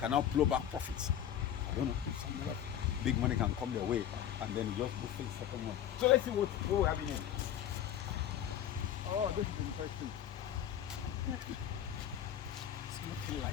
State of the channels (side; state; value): right; quieter; 10.3 dB